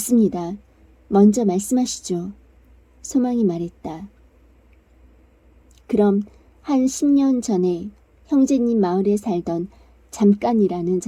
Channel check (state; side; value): identical; both; correlation 1.00